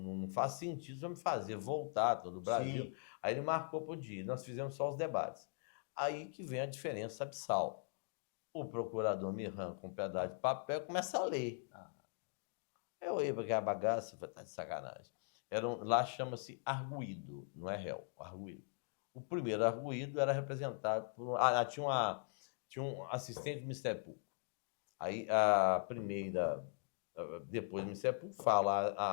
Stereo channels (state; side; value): silent; right; 51 dB below the other